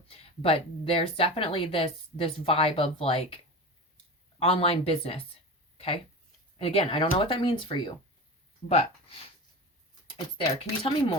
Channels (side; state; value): both; normal; correlation 0.29